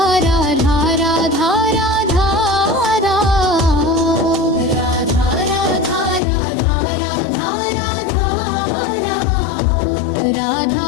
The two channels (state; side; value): drops out; right; at 6.2 s